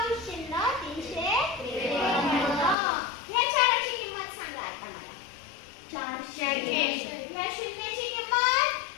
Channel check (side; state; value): right; drops out; at 2.8 s